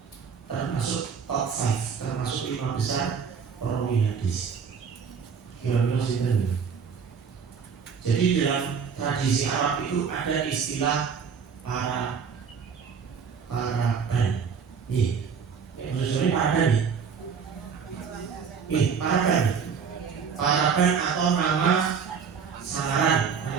termasuk top 5, termasuk 5 besar perawi hadis. Kira-kira sini. Jadi dalam tradisi Arab itu ada istilah para ban. Nih, maksudnya para ban nih. Para ban atau nama samaran,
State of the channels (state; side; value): quieter; left; 6.3 dB